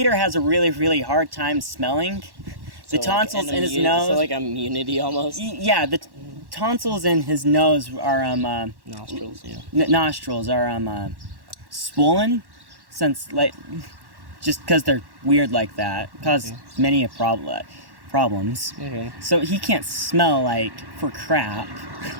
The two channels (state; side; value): late; left; 1.1 ms